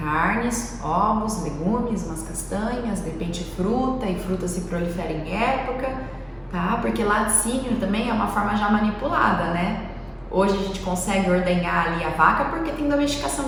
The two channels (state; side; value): identical; both; correlation 1.00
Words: ovos, legumes, umas castanhas, de repente fruta, e fruta se prolifera em época, tá? Porque laticínio também é uma forma já manipulada, né? Hoje a gente consegue ordenhar ali a vaca porque tem domesticação